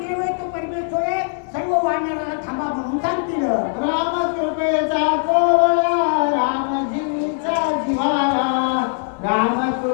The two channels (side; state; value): right; silent; digital silence